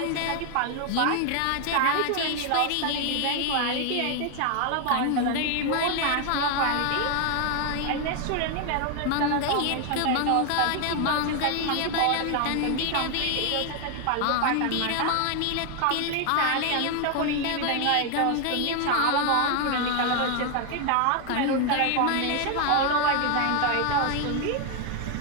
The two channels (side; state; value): both; different; correlation 0.01